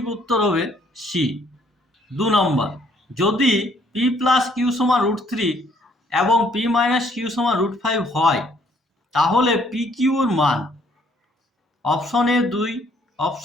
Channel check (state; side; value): normal; both; correlation 0.64